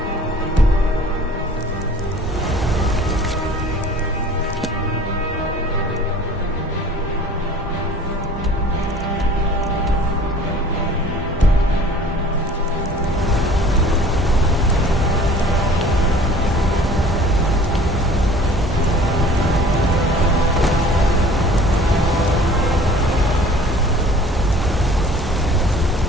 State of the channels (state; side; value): normal; both; correlation 0.48